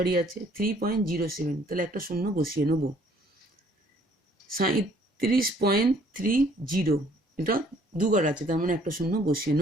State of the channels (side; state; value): both; normal; correlation 0.60